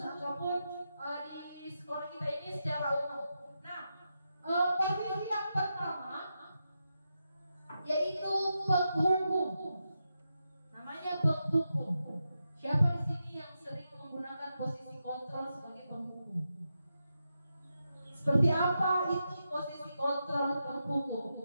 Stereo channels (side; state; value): both; inverted; correlation -0.87